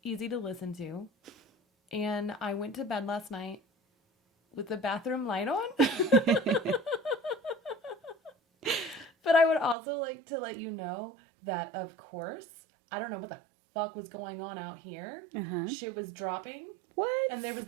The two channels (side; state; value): left; drops out; at 9.8 s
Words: easy to listen to. And I went to bed last night with the bathroom light on. But I would also like to let you know that, of course, I don't know what the fuck was going on out here. Shit was dropping. What? And there was